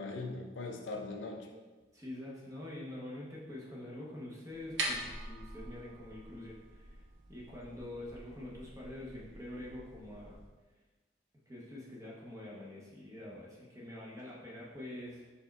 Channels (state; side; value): normal; both; correlation 0.43